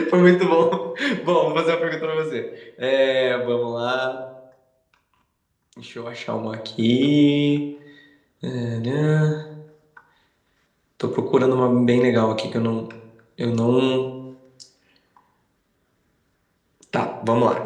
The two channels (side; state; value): both; identical; correlation 1.00